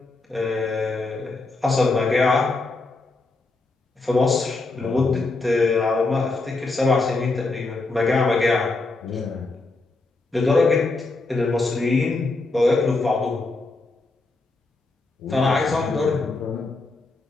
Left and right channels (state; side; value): quieter; right; 3.4 dB